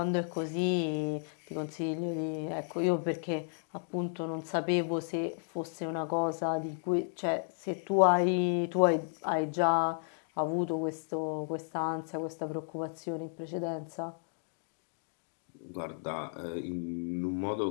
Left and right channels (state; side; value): silent; right; digital silence